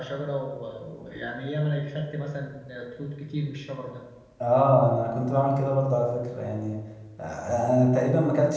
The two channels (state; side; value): identical; both; correlation 1.00